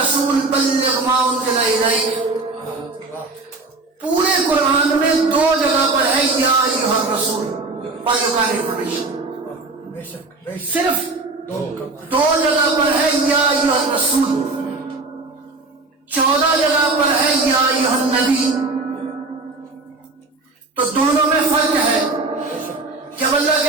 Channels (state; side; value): quieter; left; 3.5 dB